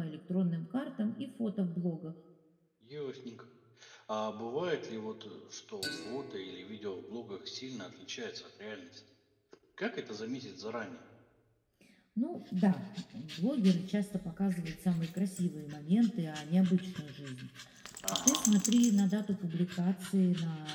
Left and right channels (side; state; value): both; identical; correlation 1.00